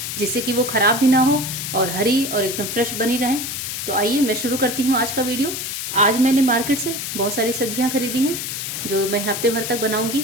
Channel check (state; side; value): noise; left; hiss, 5 dB below the sound